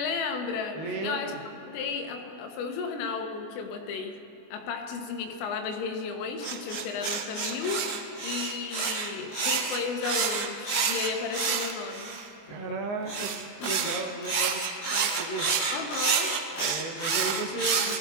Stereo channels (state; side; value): late; right; 24 ms